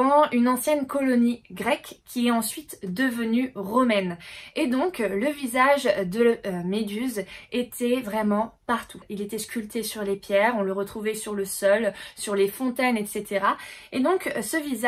une ancienne colonie grecque qui est ensuite devenue romaine. Et donc le visage de Méduse était vraiment partout. Il était sculpté sur les pierres, on le retrouvait sur le sol, sur les fontaines, etc. Et donc ce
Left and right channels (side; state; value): both; identical; correlation 1.00